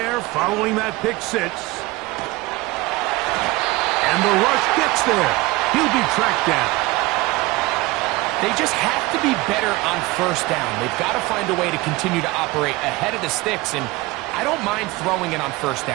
following that pick six. And the rush gets there. He'll be tracked down. They just have to be better on 1st down. They've got to find a way to continue to operate ahead of the sticks, and I don't mind throwing it on 1st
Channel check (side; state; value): left; quieter; 21.1 dB